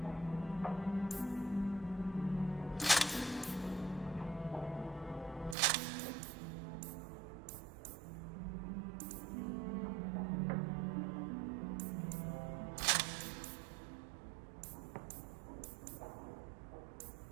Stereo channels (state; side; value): drops out; left; at 5.6 s